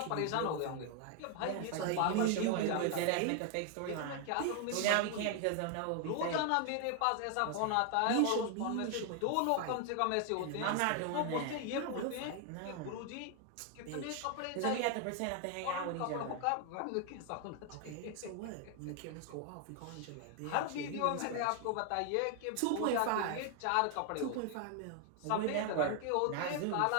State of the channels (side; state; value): both; different; correlation 0.00